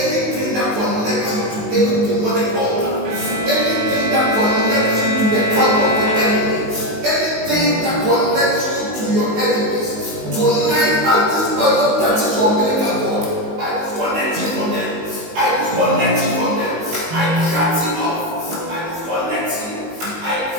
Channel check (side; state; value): left; late; 19 ms